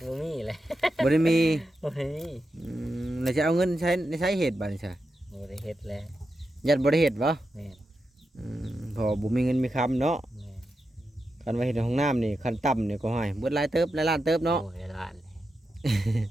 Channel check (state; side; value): normal; both; correlation 0.88